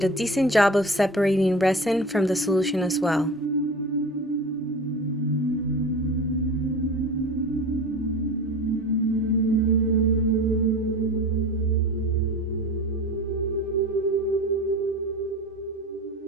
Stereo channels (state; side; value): normal; both; correlation 0.34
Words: a decent job of separating resin from the solution as well.